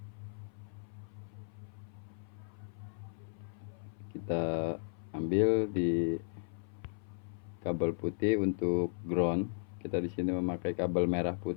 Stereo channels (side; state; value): right; silent; 54 dB below the other